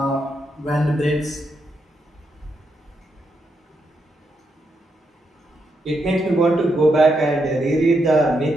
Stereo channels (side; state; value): both; normal; correlation 0.81